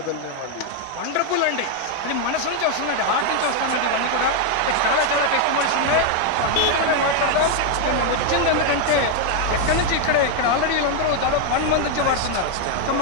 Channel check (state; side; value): different; both; correlation 0.01